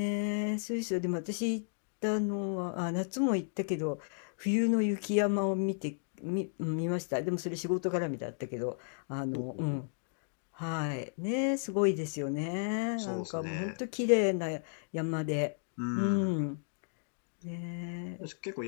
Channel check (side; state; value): right; silent; digital silence